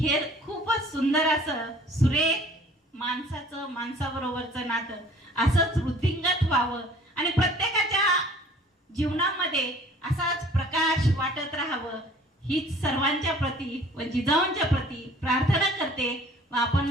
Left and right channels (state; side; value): normal; both; correlation 0.51